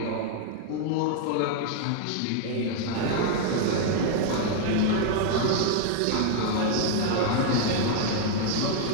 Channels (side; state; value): both; different; correlation 0.00